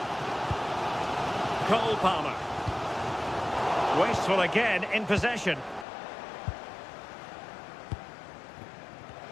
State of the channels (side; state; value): right; drops out; at 5.9 s